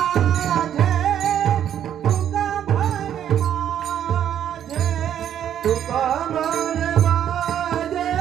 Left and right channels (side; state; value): left; quieter; 10.0 dB